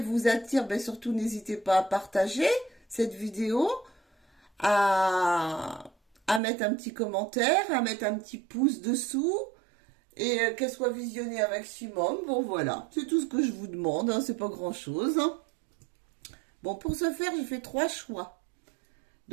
attire, ben surtout n'hésitez pas à partager cette vidéo, à, à mettre un petit commentaire, à mettre un petit pouce dessous et qu'elle soit visionnée un maximum. Bon voilà, c'est tout ce que je vous demande, hein, c'est pas grand-chose. Bon, pour ce faire, j'ai fait 3 choix.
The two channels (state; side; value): drops out; left; at 6.4 s